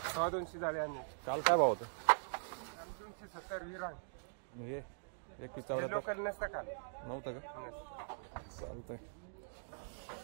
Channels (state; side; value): silent; left; digital silence